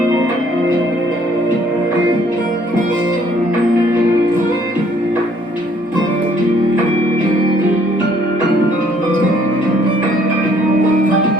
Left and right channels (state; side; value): normal; both; correlation 0.63